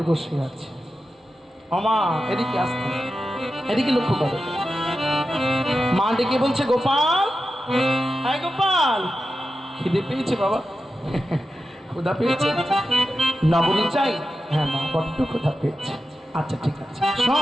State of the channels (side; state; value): both; normal; correlation 0.91